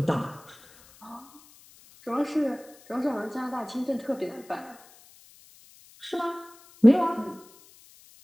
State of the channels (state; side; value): noise; left; hiss, 25 dB below the sound